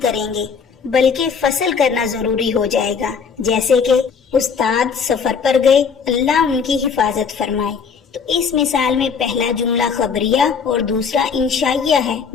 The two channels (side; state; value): right; quieter; 6.1 dB